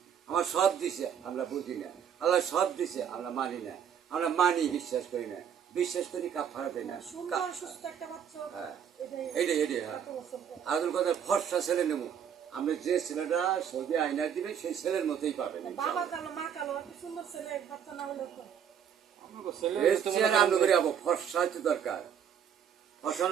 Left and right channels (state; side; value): quieter; left; 8.4 dB